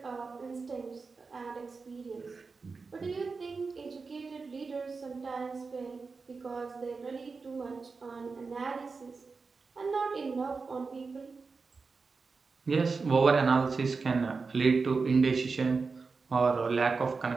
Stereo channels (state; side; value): quieter; left; 4.5 dB